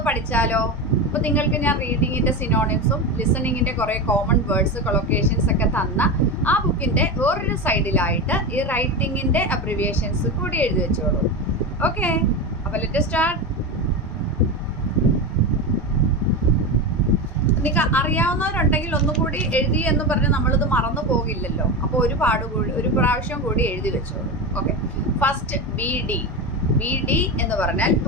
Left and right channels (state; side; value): normal; both; correlation 0.20